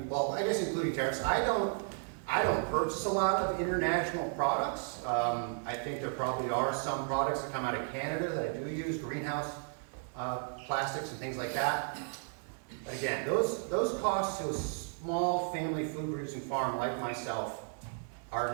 well, I guess including tariffs, I don't purchase a lot of international products. I think there probably are some products that come out of Canada that I do use, greenhouse plastics and things like that. But again, those costs to a small family food producing farm like myself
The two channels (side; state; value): left; silent; 55 dB below the other